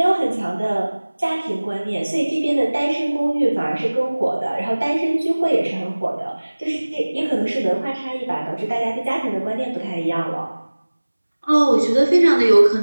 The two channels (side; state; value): both; inverted; correlation -1.00